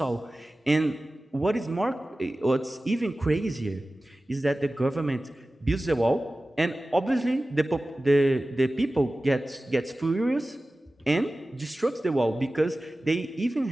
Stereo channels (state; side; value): normal; both; correlation 0.96